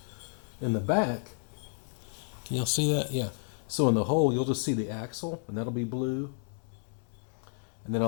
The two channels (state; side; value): silent; right; 57 dB below the other